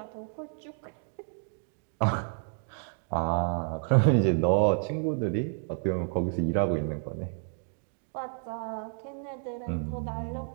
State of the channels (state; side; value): silent; left; 57 dB below the other